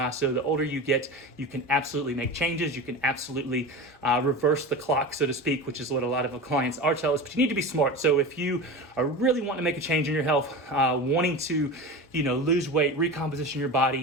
So the older you get, you can absolutely make changes. You can absolutely reverse the clock, so to speak, which is what a lot of our clients are telling us. But you need to be smart. So if you are really wanting to make a change in your health, wanting to, lose weight, recomposition your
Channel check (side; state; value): both; normal; correlation 0.29